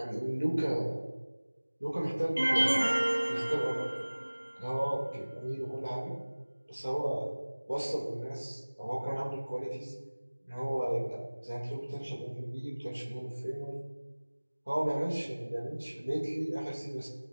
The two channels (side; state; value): both; inverted; correlation -1.00